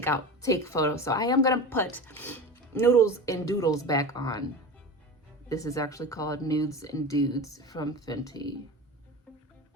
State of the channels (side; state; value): both; normal; correlation 0.30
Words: photos. So I am gonna put Noodles and Doodles back on. This is actually called Nudes and Dudes from Fenty.